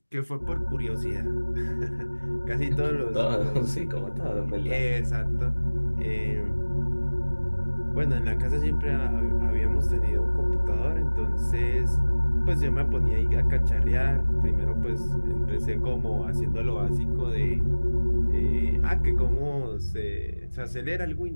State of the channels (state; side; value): inverted; both; correlation -1.00